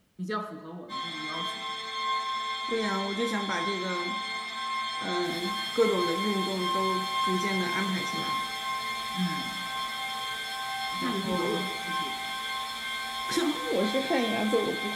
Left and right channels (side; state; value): both; identical; correlation 1.00